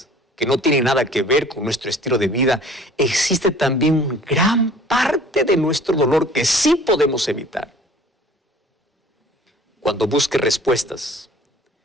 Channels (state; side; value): normal; both; correlation 0.50